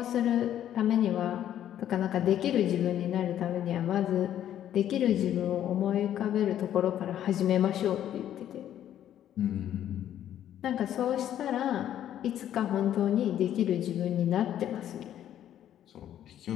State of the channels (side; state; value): right; quieter; 11.1 dB